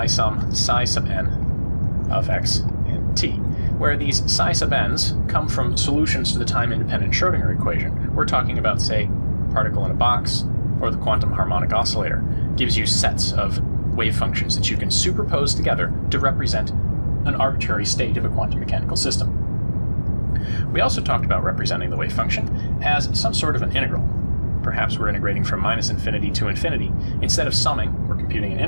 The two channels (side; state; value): both; inverted; correlation -1.00